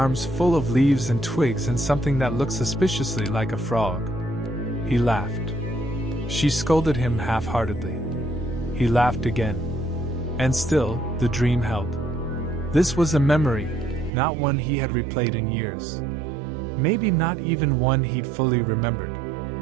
full of leaves and twigs and something that looked suspiciously like a frog. He laughed. She scolded him half-heartedly. He laughed again. And still, the dream held. This was a memory, not one he had replayed in years. Maybe not even one he'd fully remembered.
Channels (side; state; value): left; drops out; at 14.1 s